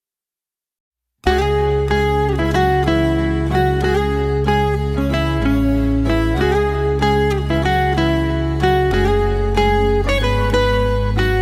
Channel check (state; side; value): identical; both; correlation 1.00